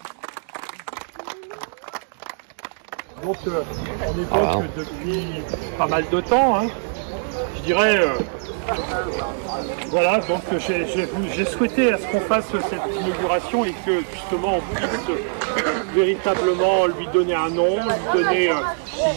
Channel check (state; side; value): silent; left; digital silence